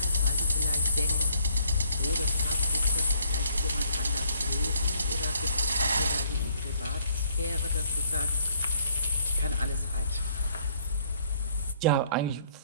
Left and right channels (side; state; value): both; inverted; correlation -0.65